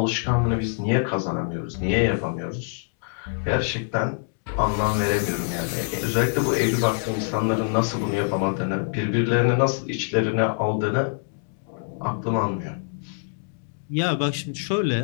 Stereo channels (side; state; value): right; silent; digital silence